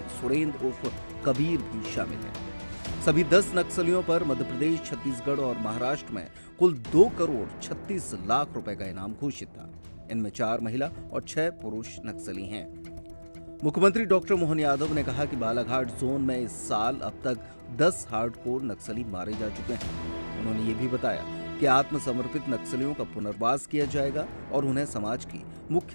सुरेंद्र उर्फ कबीर भी शामिल है। सभी 10 नक्सलियों पर मध्य प्रदेश, छत्तीसगढ़ और महाराष्ट्र में कुल 2 करोड़ 36 लाख रुपए का इनाम घोषित था। इनमें 4 महिला और 6 पुरुष नक्सली हैं। मुख्यमंत्री डॉक्टर मोहन यादव ने कहा कि बालाघाट जोन में इस साल अब तक 10 हार्डकोर नक्सली मारे जा चुके हैं। उन्होंने ये भी बताया कि आत्मसमर्पित नक्सलियों का पुनर्वास किया जाएगा और उन्हें समाज की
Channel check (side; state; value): both; inverted; correlation -1.00